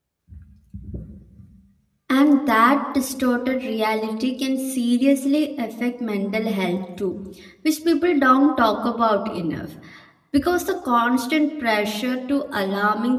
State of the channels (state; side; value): identical; both; correlation 1.00